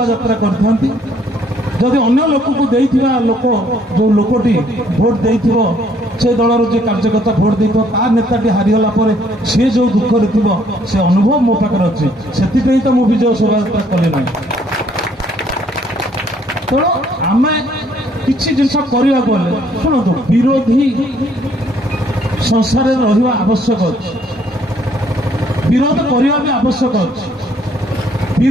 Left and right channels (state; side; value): normal; both; correlation 0.64